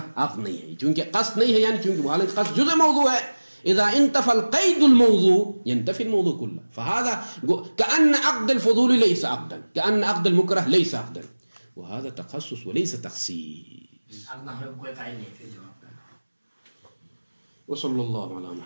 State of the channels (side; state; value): both; inverted; correlation -1.00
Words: عقد نہیں ہے, چونکہ قصد نہیں ہے, یعنی چونکہ حالانکہ قصد جزء موضوع ہے. اذا انتفى القيد الموضوع ينتفي الموضوع كله. فهذا كأن عقد الفضول ليس عقدا, كأن عقد المكره ليس عقدا, وهذا تخصص وليس تخصيص. وصلى الله على